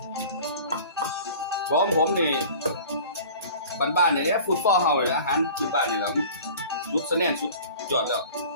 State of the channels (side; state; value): both; inverted; correlation -0.43